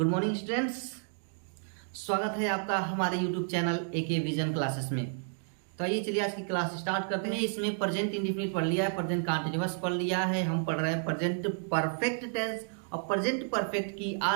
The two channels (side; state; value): left; silent; digital silence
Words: मॉर्निंग स्टूडेंट्स, स्वागत है आपका हमारे YouTube channel AK Vision Classes में। तो आइए चलिए आज की क्लास स्टार्ट करते हैं। इसमें प्रेजेंट इंडेफिनिट पढ़ लिया है, प्रेजेंट कंटीन्यूअस पढ़ लिया है, हम पढ़ रहे हैं प्रेजेंट परफेक्ट टेंस और प्रेजेंट परफेक्ट की